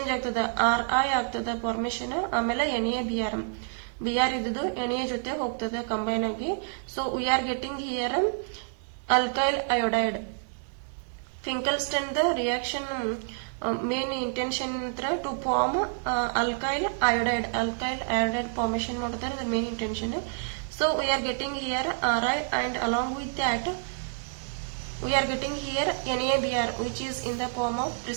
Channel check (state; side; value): silent; left; digital silence